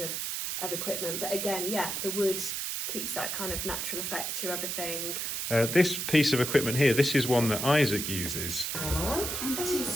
equipment. But again, the wood keeps that kind of natural effect to everything. This piece of equipment here, this is one that Isaac uses. 1 and 2.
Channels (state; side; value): noise; right; hiss, 2 dB below the sound